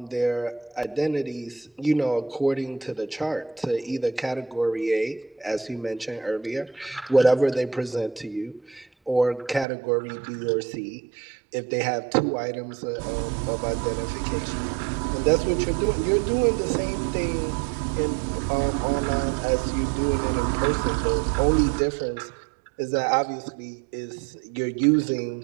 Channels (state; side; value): drops out; left; at 9.7 s